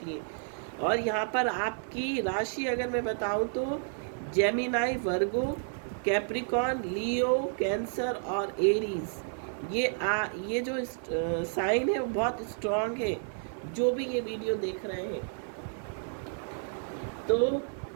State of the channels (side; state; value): left; silent; 57 dB below the other